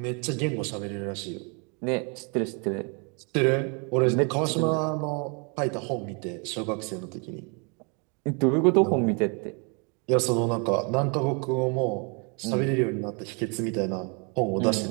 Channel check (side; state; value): left; quieter; 34.8 dB